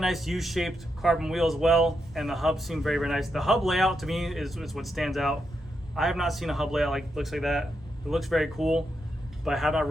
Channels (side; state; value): both; normal; correlation 0.83